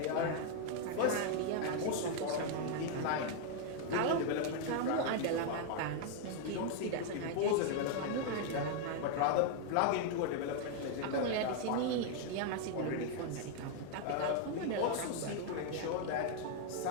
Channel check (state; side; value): different; both; correlation 0.00